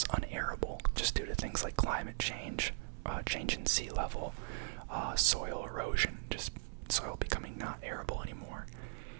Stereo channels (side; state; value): left; silent; 52 dB below the other